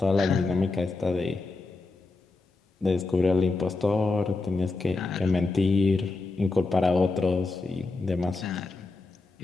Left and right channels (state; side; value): quieter; right; 3.5 dB